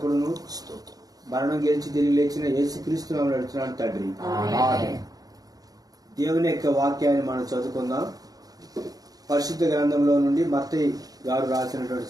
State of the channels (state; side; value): late; left; 0.18 ms